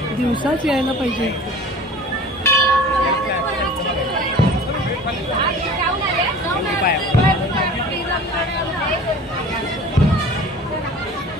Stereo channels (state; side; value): normal; both; correlation 0.42